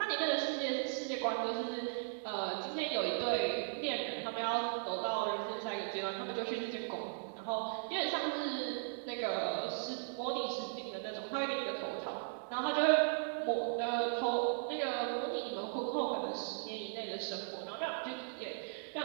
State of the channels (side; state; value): left; silent; 53 dB below the other